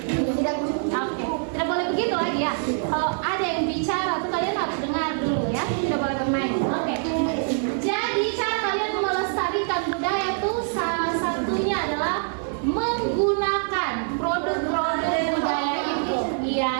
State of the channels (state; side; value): silent; left; 62 dB below the other